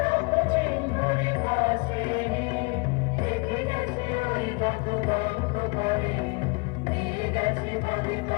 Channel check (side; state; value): right; quieter; 29.7 dB